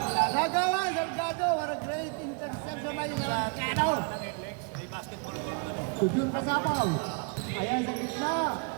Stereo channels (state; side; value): quieter; left; 35.4 dB